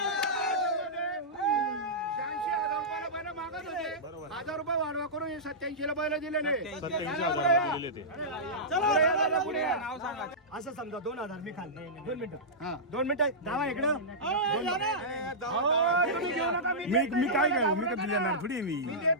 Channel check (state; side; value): normal; both; correlation -0.15